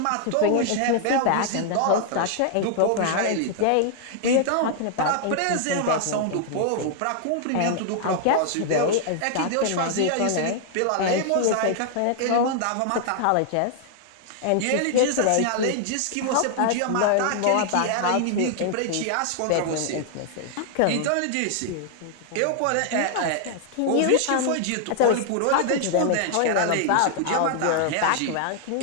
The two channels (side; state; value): both; different; correlation 0.00